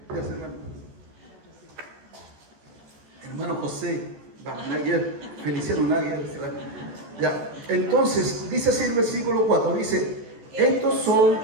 hermano. Hermano José, Feliciano Naguer. Ya, entonces, dice así el versículo 4, dice: estos son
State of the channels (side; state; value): left; late; 14 ms